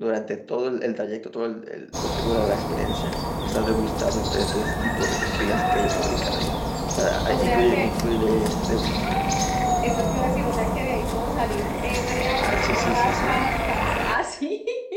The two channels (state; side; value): identical; both; correlation 1.00